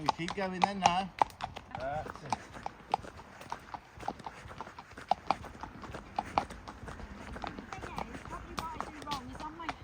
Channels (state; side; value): identical; both; correlation 1.00